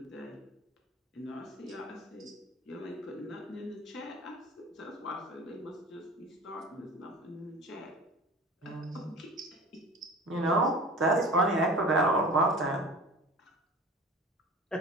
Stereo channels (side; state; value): both; normal; correlation 0.38